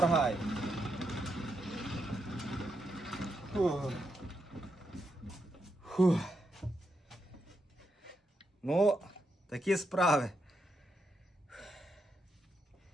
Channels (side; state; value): both; normal; correlation 0.82